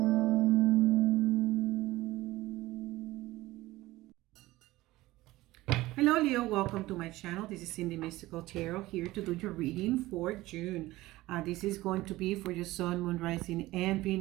Leo, welcome to my channel. This is Cindy Mystical Tarot here to do your reading for June. This is going to be for your Sun, Moon, Rising, and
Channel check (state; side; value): quieter; left; 18.0 dB